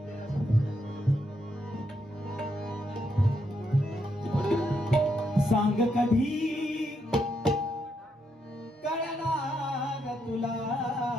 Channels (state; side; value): normal; both; correlation 0.79